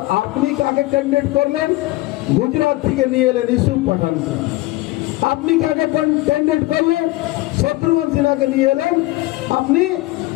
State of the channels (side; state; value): right; quieter; 19.3 dB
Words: আপনি কাকে ক্যান্ডিডেট করলেন? গুজরাট থেকে নিয়ে এলেন ইউসুফ পাঠানকে। আপনি কাকে ক্যান্ডিডেট করলেন? শত্রুঘ্ন সিনহাকে নিয়ে এলেন আপনি